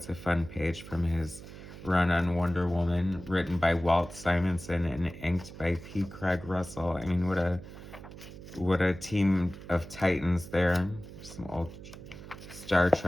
a fun page from his run on Wonder Woman, written by Walt Simonson and inked by P. Craig Russell. I mean, what a team of titans there. Some old Star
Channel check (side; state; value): right; noise; hum, 14 dB below the sound